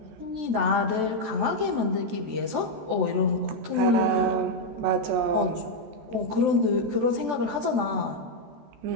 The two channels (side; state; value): left; late; 14 ms